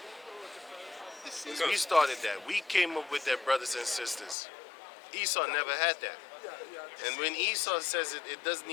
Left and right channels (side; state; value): right; drops out; at 4.4 s